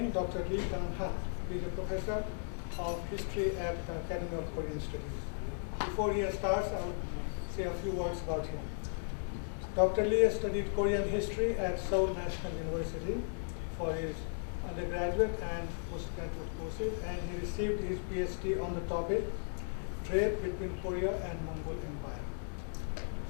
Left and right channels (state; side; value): silent; right; digital silence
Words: Dr. Kang Hahn. He is a professor of history at the Academy of Korean Studies. Before he starts, I will say a few words about him. Dr. Lee studied Korean history at Seoul National University for his undergraduate and postgraduate courses, and he received his PhD on the topic Trade between Korea and Mongol Empire.